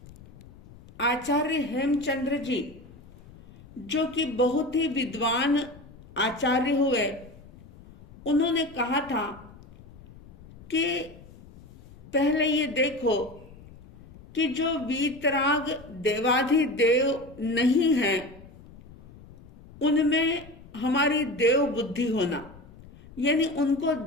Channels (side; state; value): left; noise; rumble, 21 dB below the sound